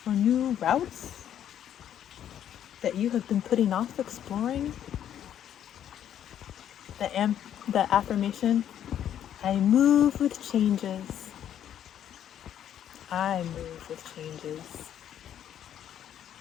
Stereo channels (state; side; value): quieter; right; 10.2 dB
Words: or new routes that you have been putting off exploring? The affirmation, I move with changes. I move with changes.